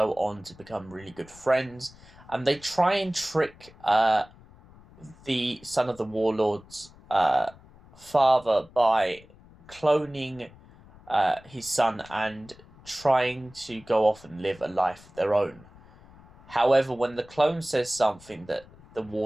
on to become really good friends, and they try and trick the son of the warlord's father by cloning his son and trying to go off and live a life of their own. However, when the clone says something that the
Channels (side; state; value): left; noise; rumble, 24 dB below the sound